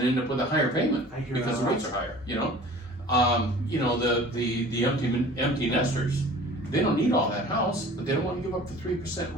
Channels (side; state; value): both; normal; correlation 0.45